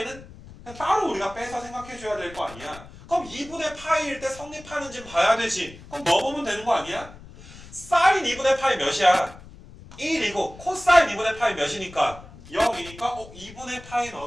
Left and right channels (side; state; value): left; noise; rumble, 18 dB below the sound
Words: 그냥 따로 우리가 빼서 생각해 줘야 될 거 아니야. 그럼 2분의 파이일 때 성립하는지 봐야 되지. 그럼 넣어보면 되는 거 아니야? 사인 2분의 파이 몇이야? 1이고 코사인 2분의 파이 몇이니까 0이니까 2분의 파이